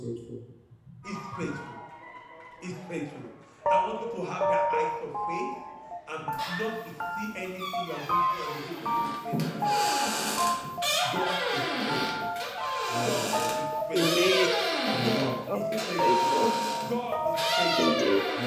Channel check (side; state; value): both; identical; correlation 1.00